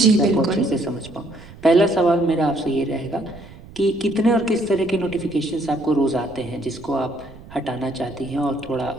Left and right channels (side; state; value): right; noise; rumble, 19 dB below the sound